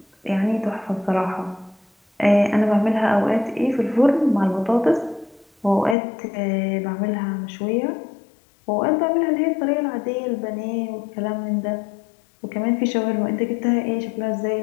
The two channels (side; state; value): right; drops out; at 6.0 s